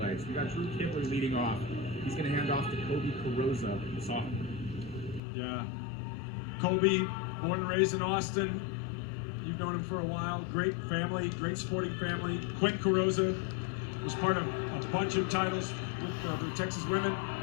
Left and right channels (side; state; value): right; drops out; at 5.2 s